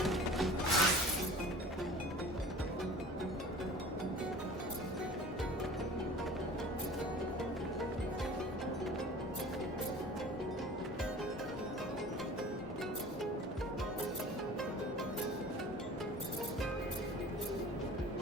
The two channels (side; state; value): both; normal; correlation 0.42